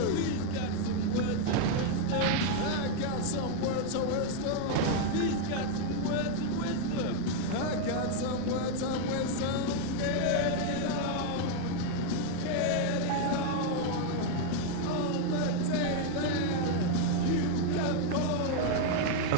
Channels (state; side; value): different; both; correlation 0.00